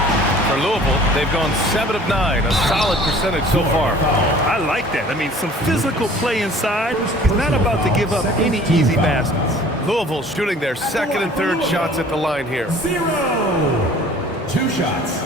For Louisville, they've gone 7 of 9, a solid percentage so far. I like that. I mean, some physical play inside. He's not about to give up any easy baskets. Louisville shooting their second and third shots at the line here. 0. 2 shots.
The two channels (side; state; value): both; normal; correlation 0.50